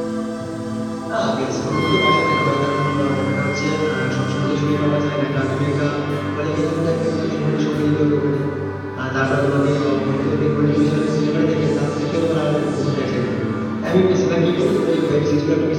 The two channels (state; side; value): identical; both; correlation 1.00